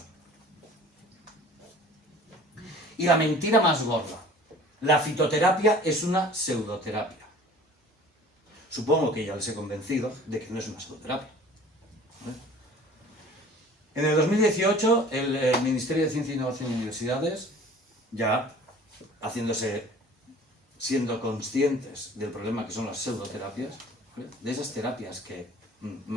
Y la mentira más gorda. La fitoterapia es una pseudoterapia. Supongo que ya les he convencido de que no es una pseudoterapia, ¿vale? En el 2018, el Ministerio de Ciencia, Innovación y Universidades, ya siendo conscientes del problema que son las pseudoterapias, ¿vale? De esas terapias que,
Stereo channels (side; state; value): both; normal; correlation 0.47